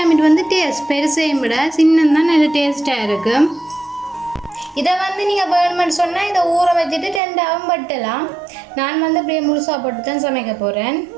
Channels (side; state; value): left; drops out; at 7.2 s